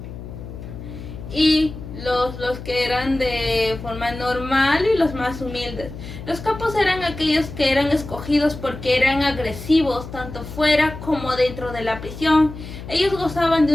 y los que eran de forma normal y los más humildes. Los capos eran aquellos que eran escogidos porque eran agresivos tanto fuera como dentro de la prisión. Ellos gozaban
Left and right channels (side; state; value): left; noise; hum, 11 dB below the sound